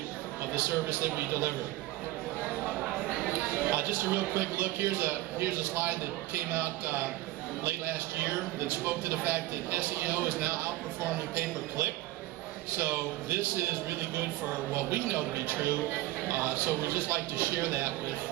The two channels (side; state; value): left; quieter; 17.7 dB